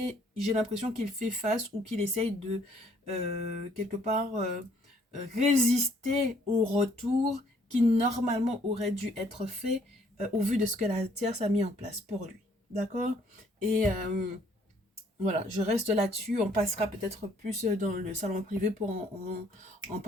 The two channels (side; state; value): both; normal; correlation 0.64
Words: j'ai l'impression qu'il fait face ou qu'il essaye de, quelque part, résister au retour qui normalement aurait dû être fait au vu de ce que la tierce a mis en place pour lui. D'accord. Et voilà, je reste là-dessus. On passera peut-être plus dans le salon privé pour en